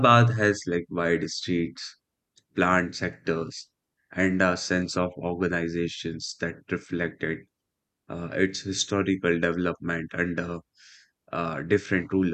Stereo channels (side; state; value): both; identical; correlation 1.00